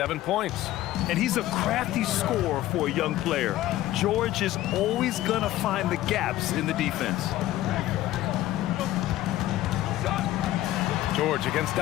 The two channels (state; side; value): quieter; right; 14.9 dB